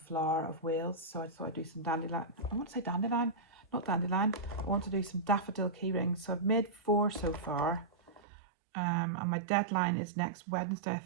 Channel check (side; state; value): left; drops out; at 8.2 s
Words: of Wales. So I thought I'd do some dandelion. I want to say dandelion, not dandelion. I want to do some daffodil key rings. So I've made 4 so far, and my deadline is next Wednesday, I